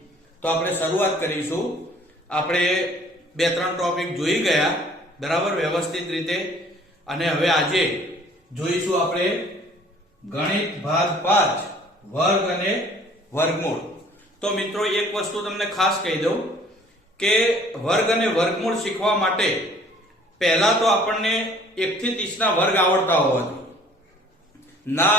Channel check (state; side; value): normal; both; correlation 0.54